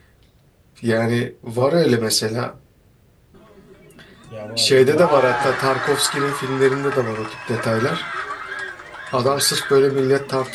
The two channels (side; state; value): both; identical; correlation 1.00